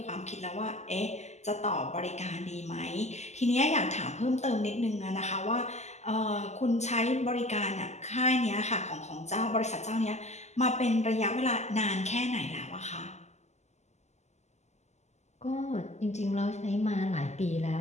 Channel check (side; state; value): right; late; 0.33 ms